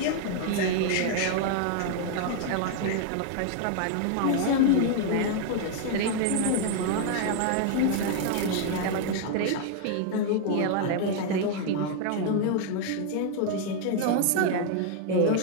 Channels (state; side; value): different; both; correlation 0.00